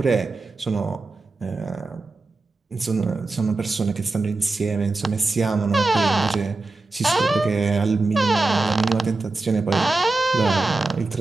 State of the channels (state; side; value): quieter; left; 3.4 dB